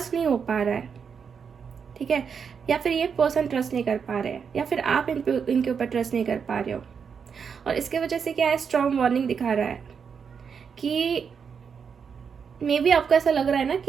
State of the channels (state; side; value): quieter; left; 6.5 dB